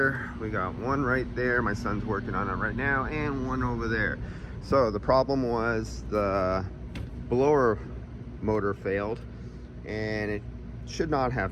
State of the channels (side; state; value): both; identical; correlation 1.00